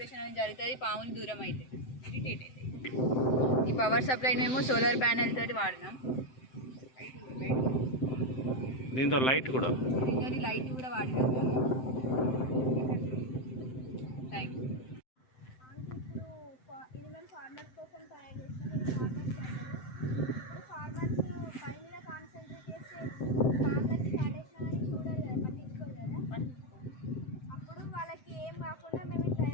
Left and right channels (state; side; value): late; right; 7.8 ms